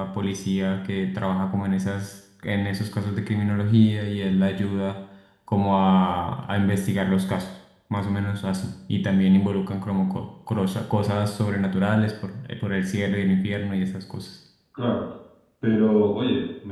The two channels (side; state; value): both; identical; correlation 1.00